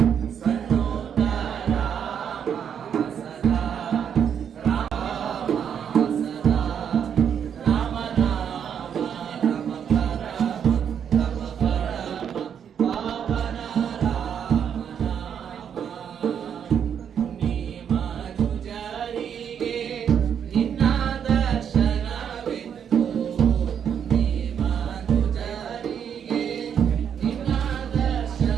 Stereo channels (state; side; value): quieter; left; 8.2 dB